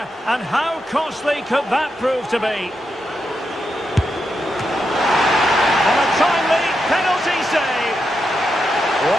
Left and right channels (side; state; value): both; normal; correlation 0.85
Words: And how costly could that prove to be? And a timely penalty save. What